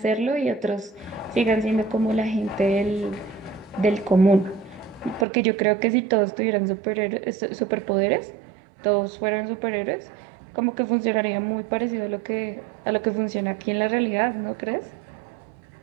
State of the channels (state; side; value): drops out; left; at 5.2 s